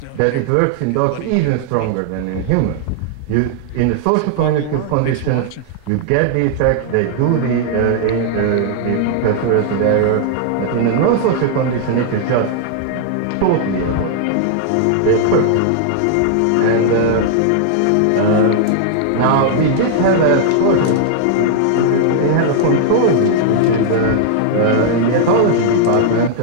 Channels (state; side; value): different; both; correlation -0.01